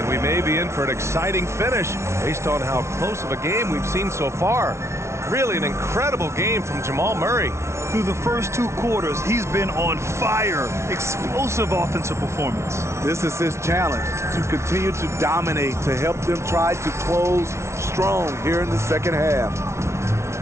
we may be in for an exciting finish based on how close of a game we've seen so far. Really an incredible game from Jamal Murray. Through the first 2 quarters, he's been on fire. Explosive offensive performance. This is his challenge, to continue to dominate, to help them try to close strong here in the second half.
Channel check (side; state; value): left; late; 0.13 ms